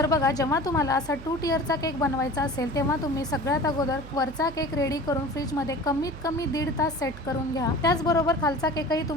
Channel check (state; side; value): noise; right; hum, 15 dB below the sound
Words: बघा, जेव्हा तुम्हाला असा 2 टियरचा केक बनवायचा असेल तेव्हा तुम्ही सगळ्यात अगोदर वरचा केक रेडी करून फ्रीजमध्ये कमीत कमी 1.5 तास सेट करून घ्या। त्याचबरोबर खालचा केकही